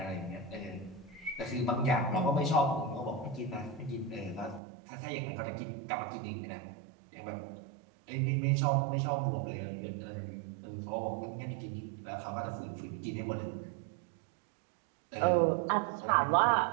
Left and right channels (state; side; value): drops out; left; at 4.6 s